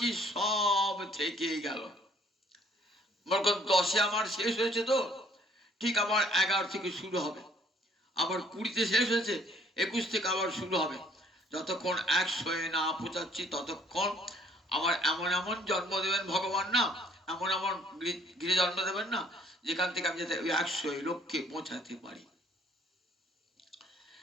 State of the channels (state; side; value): normal; both; correlation 0.60